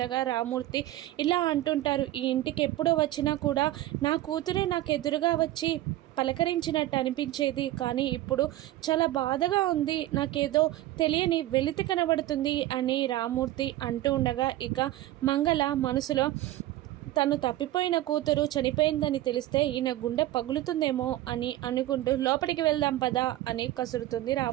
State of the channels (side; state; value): left; quieter; 15.2 dB